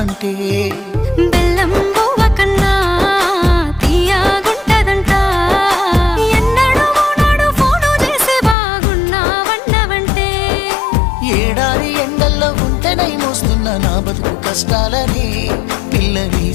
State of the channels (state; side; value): drops out; right; at 8.6 s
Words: బెల్లం బువ్వ కన్నా తీయగుంటదంట. ఎన్నడూ నాడు ఫోను చేసి బాగున్నావన్నవంటే ఏడాది ఎండల్లో ఉంటేనై మోస్తున్న నా బతుకు కష్టాలని పిల్లని